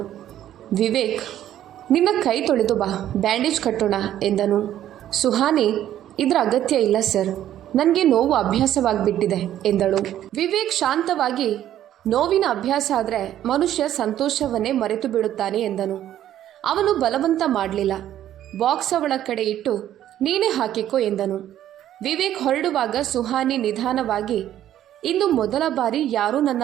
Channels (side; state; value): left; quieter; 11.8 dB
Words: ವಿವೇಕ್, ನಿನ್ನ ಕೈ ತೊಳೆದು ಬಾ, ಬ್ಯಾಂಡೇಜ್ ಕಟ್ಟೋಣ ಎಂದನು. ಸುಹಾನಿ, ಇದರ ಅಗತ್ಯ ಇಲ್ಲ ಸರ್, ನನಗೆ ನೋವು ಅಭ್ಯಾಸವಾಗಿಬಿಟ್ಟಿದೆ ಎಂದಳು. ವಿವೇಕ್ ಶಾಂತವಾಗಿ, ನೋವಿನ ಅಭ್ಯಾಸ ಆದರೆ ಮನುಷ್ಯ ಸಂತೋಷವನ್ನೇ ಮರೆತು ಬಿಡುತ್ತಾನೆ ಎಂದನು. ಅವನು ಬಲವಂತ ಮಾಡಲಿಲ್ಲ. ಬಾಕ್ಸ್ ಅವಳ ಕಡೆ ಇಟ್ಟು, ನೀನೇ ಹಾಕಿಕೋ ಎಂದನು. ವಿವೇಕ್ ಹೊರಡುವಾಗ ಸುಹಾನಿ ನಿಧಾನವಾಗಿ, ಇಂದು ಮೊದಲ ಬಾರಿ ಯಾರೂ ನನ್ನ